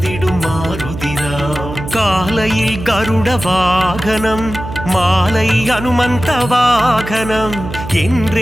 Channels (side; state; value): right; noise; hum, 10 dB below the sound